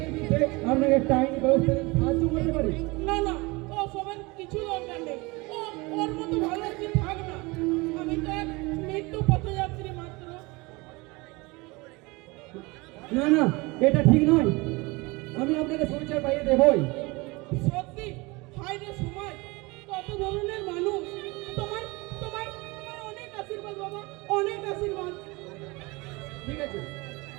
বিরুদ্ধে আপনাকে একটা আইনি ব্যবস্থা নিতে সাহায্য করতে পারি। না না, ও সবের কিছু দরকার নেই, ও ওর মতো ভালো কি থাক না। আমি তো এক মৃত্যু পথযাত্রী মাত্র। না না, এটা ঠিক নয়। আমি আপনাকে সংসার পাইয়ে দেবই। সত্যি, হায় রে সময়, কত ধরনের মানুষ। তোমার তোমার তোমার অনেক আশীর্বাদ বাবা, অনেক আশীর্বাদ। ঠিক আছে,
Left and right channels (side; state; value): left; quieter; 24.7 dB